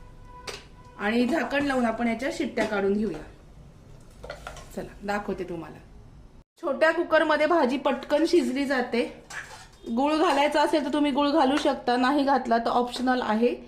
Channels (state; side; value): identical; both; correlation 1.00